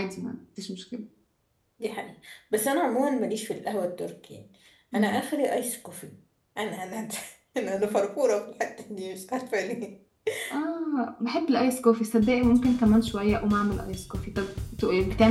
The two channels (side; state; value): both; identical; correlation 1.00